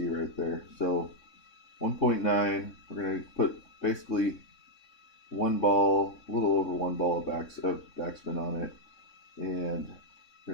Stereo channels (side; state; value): right; late; 3.6 ms